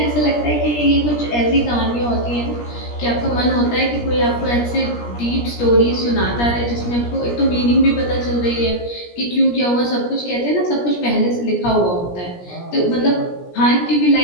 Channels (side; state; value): right; late; 17 ms